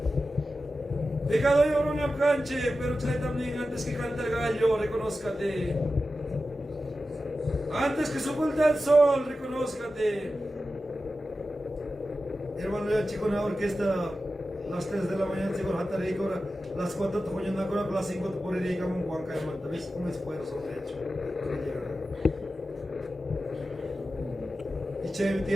Pecado yo no me canche, pero trae también antes que cante el gallo, reconózcate. Antes que se oculta el sol, reconózcate. Hermano, ya chico en la orquesta, las 3 de la mañana, chico, las 4 te ponen una las 5 te ponen y como un guanca, hermano. ¿Ves un esfuerzo de hecho? Y che,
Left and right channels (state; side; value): normal; both; correlation 0.93